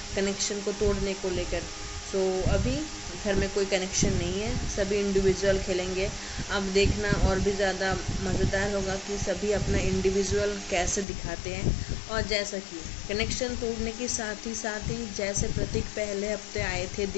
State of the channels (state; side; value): drops out; right; at 11.1 s